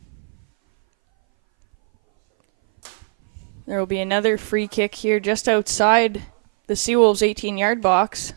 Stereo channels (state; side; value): silent; left; 61 dB below the other